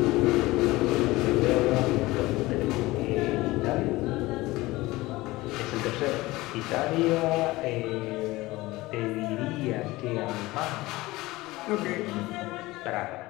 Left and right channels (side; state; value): right; quieter; 19.8 dB